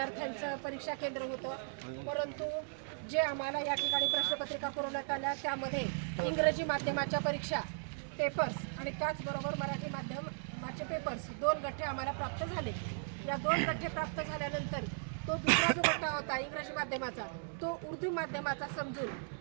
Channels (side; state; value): left; silent; digital silence